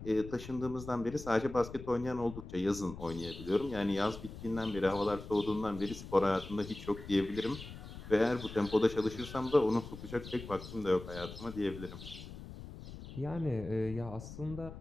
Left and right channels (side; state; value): left; noise; rumble, 12 dB below the sound